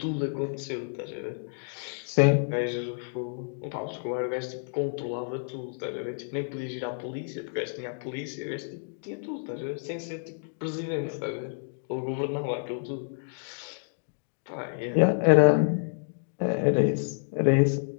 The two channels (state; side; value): silent; right; digital silence